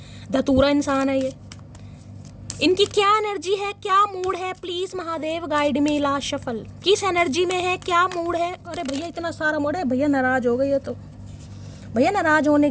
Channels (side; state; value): both; identical; correlation 1.00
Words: धतूरा इंसान है ये, इनकी क्या एनर्जी है, क्या मूड है? Please Mahadev guide me. Last shuffle किस एनर्जी में है, क्या मूड है? अरे भैया इतना सारा मूड है, भैया नाराज हो गई है। तो भैया नाराज होने